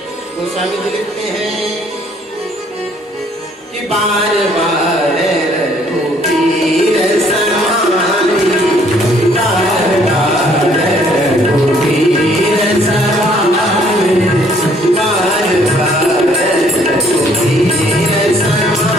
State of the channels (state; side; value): normal; both; correlation 0.62